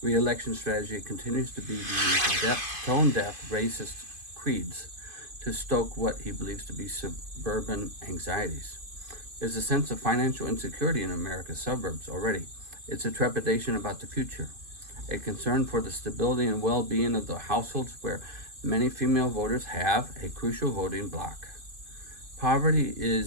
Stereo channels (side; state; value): left; late; 2.5 ms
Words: re-election strategy continues to be to use tone-deaf racist creeds to stoke what he believes to be suburban anxieties. There's a sense of financial insecurity in America's suburbs already. It's a trepidation about the future, a concern for the stability and well-being of the households where many female voters have a crucial voting bloc. Poverty